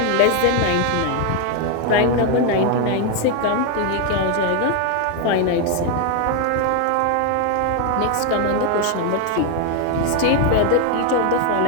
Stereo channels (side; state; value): both; different; correlation 0.01